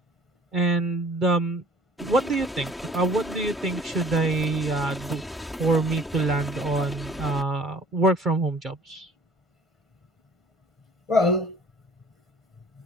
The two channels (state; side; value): normal; both; correlation 0.51